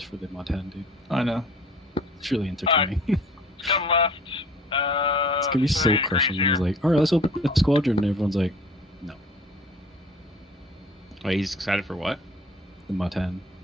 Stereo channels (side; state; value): both; normal; correlation 0.48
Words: for the mod 10, dude. I know. It's really entertaining. Come left. It's gonna be so 30 degrees crushing. And here. he's like, all right, let's open the squadron. And everyone's like, no, Wait, he's excited for what? the mod 10.